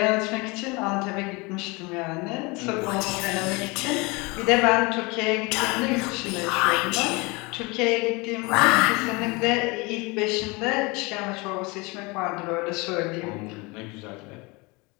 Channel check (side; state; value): right; quieter; 26.4 dB